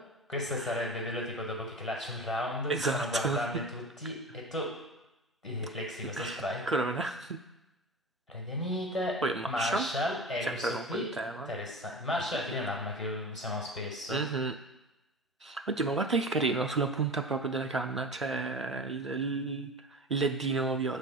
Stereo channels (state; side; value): normal; both; correlation 0.33